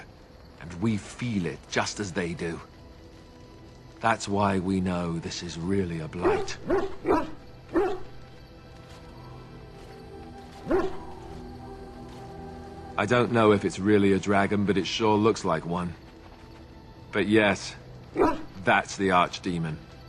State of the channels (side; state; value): both; identical; correlation 1.00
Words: and we feel it just as they do. That's why we know this is really a blight. I don't know if it's really a dragon, but it sure looks like one. But yes, that's the Archdemon.